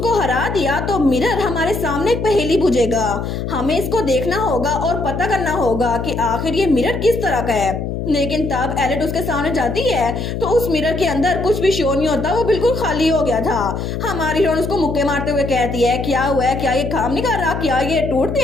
हरा दिया तो मिरर हमारे सामने एक पहेली बुझेगा। हमें इसको देखना होगा और पता करना होगा कि आखिर ये मिरर किस तरह का है। लेकिन तब एलेट उसके सामने जाती है तो उस मिरर के अंदर कुछ भी शो नहीं होता, वो बिल्कुल खाली हो गया था। हमारी हीरोइन उसको मुक्के मारते हुए कहती है क्या हुआ है, क्या ये काम नहीं कर रहा, क्या ये टूट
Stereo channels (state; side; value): noise; left; hum, 4 dB below the sound